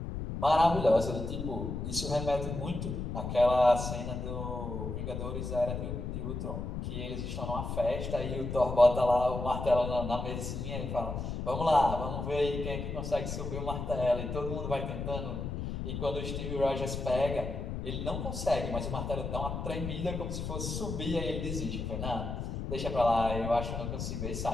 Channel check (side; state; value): left; noise; rumble, 4 dB below the sound